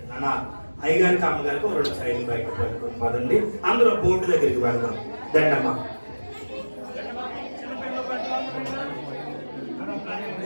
అన్న అయ్యగారికి అమ్మగారికి 2 సైడ్లు బయట పెట్టుకుని పదండి. అందులో బోర్డు దగ్గరికి వెళ్దాం. దండమ్మ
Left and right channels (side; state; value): both; inverted; correlation -1.00